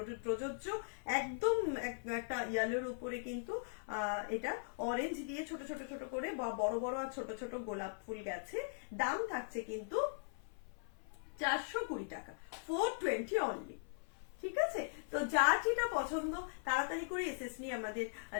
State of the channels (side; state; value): right; silent; 51 dB below the other